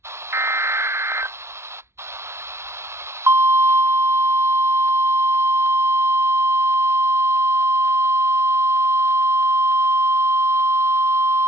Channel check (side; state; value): left; late; 0.13 ms